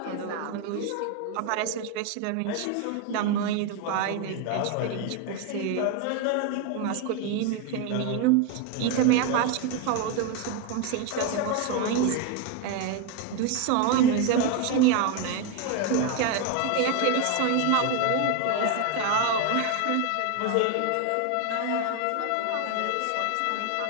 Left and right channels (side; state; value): both; different; correlation 0.01